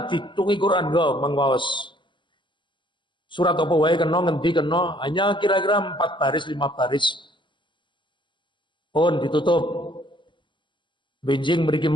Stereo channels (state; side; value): late; right; 0.23 ms